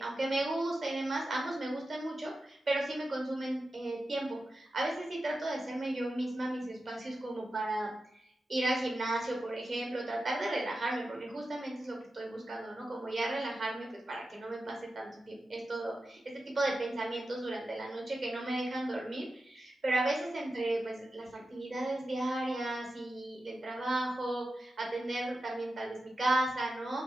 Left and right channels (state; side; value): normal; both; correlation 0.91